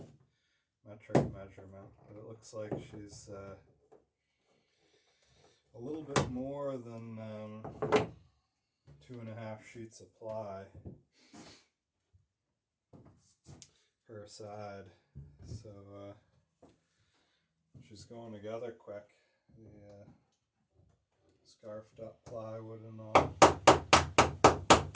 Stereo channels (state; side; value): identical; both; correlation 1.00